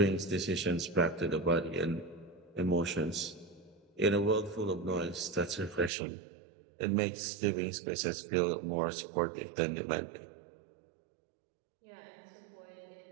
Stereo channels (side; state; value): left; drops out; at 5.9 s